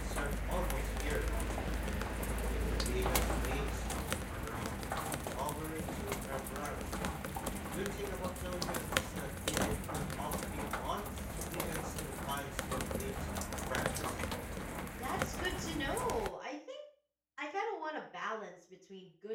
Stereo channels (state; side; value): identical; both; correlation 1.00